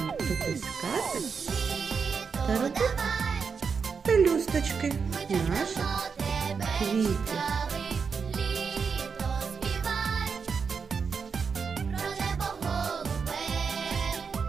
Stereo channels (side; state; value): left; quieter; 5.7 dB